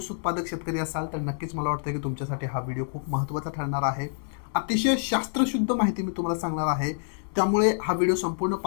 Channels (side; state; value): right; silent; digital silence